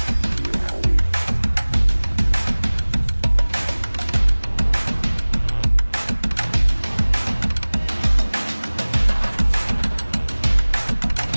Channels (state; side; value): inverted; both; correlation -1.00